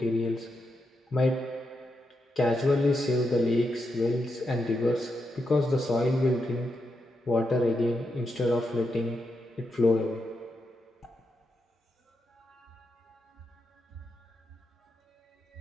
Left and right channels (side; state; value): both; normal; correlation 0.84